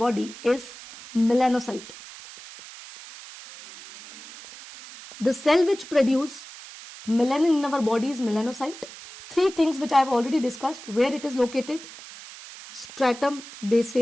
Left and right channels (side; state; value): right; noise; hiss, 16 dB below the sound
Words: is melanocyte. The cell which produces melanin in our body is melanocyte. 3 things which I have already discussed. Where it is located? Stratum